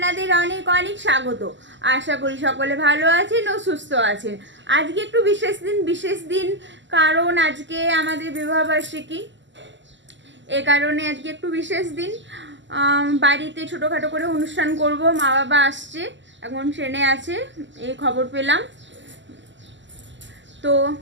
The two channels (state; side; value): late; left; 0.54 ms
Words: অনেক অনেক স্বাগত। আশা করি সকলে ভালো আছেন ও সুস্থ আছেন। আজকে একটু বিশেষ দিন কারণ আজকে আমাদের বিবাহবার্ষিকী। এ কারণে আজকে একটু বিশেষ দিন, বাড়িতে ছোটোখাটো করে অনুষ্ঠান করব। মা বাবা আসছে, এখন ট্রেনে আছে, এই খবর পেলাম। তো